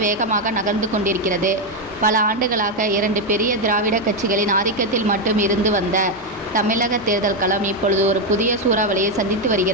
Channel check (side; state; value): both; normal; correlation 0.05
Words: வேகமாக நகர்ந்து கொண்டிருக்கிறது. பல ஆண்டுகளாக 2 பெரிய திராவிட கட்சிகளின் ஆதிக்கத்தில் மட்டும் இருந்து வந்த தமிழக தேர்தல் களம் இப்பொழுது ஒரு புதிய சூறாவளியை சந்தித்து